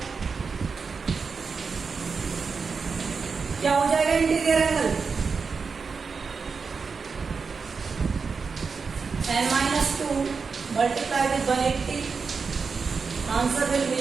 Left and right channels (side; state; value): left; quieter; 5.1 dB